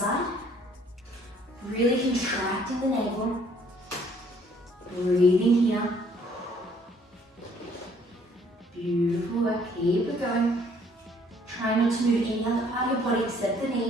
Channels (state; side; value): normal; both; correlation 0.61